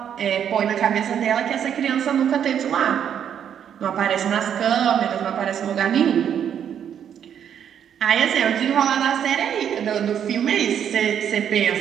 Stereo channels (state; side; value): quieter; left; 8.8 dB